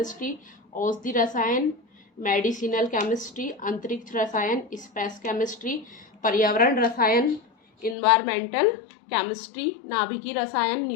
औषधि रसायन, मेडिसिनल केमिस्ट्री, अंतरिक्ष रसायन, स्पेस केमिस्ट्री, पर्यावरण रसायन, इन्वायरमेंटल केमिस्ट्री, नाभिकीय रसायन,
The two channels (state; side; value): drops out; right; at 8.0 s